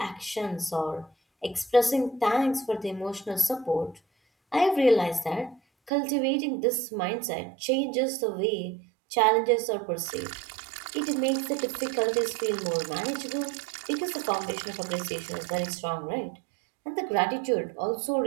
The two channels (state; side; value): drops out; left; at 5.9 s